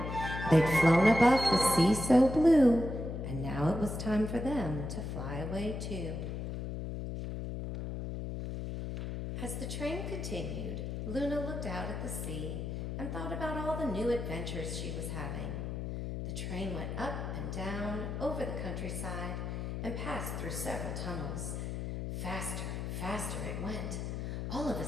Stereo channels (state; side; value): noise; left; hum, 4 dB below the sound